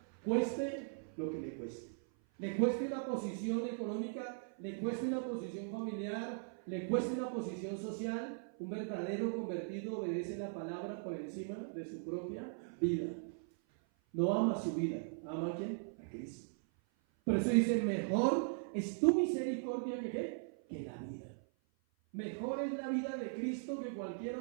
cueste lo que le cueste. Le cueste una posición económica, le cueste una posición familiar, le cueste una posición social. Un verdadero convertido obedece la palabra por encima de su propia vida. No ama su vida, ama a ¿quién? A Cristo. Por eso dice: mejor es tu misericordia que la vida. Mejor es la vida de Cristo que cualquier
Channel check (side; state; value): left; silent; 52 dB below the other